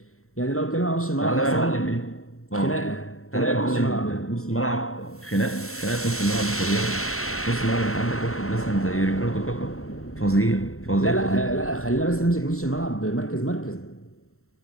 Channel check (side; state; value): right; late; 0.63 ms